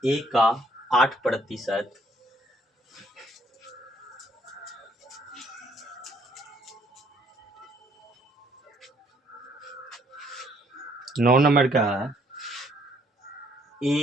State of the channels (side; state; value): both; normal; correlation 0.66